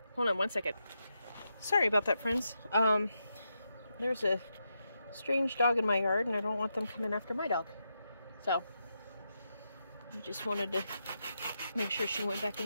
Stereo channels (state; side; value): inverted; both; correlation -0.85